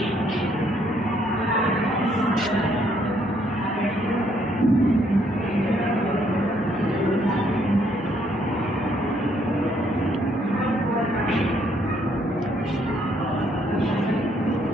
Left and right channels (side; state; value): both; normal; correlation 0.69